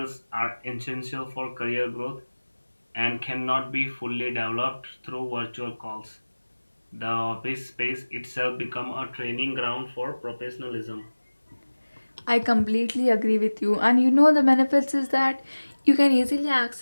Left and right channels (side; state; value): both; inverted; correlation -1.00